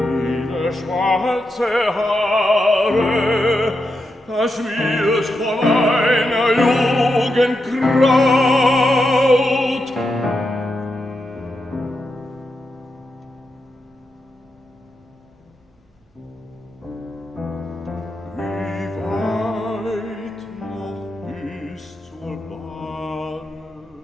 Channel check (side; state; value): both; normal; correlation 0.86